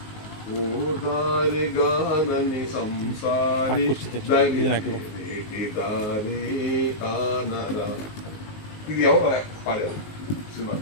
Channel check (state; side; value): late; right; 19 ms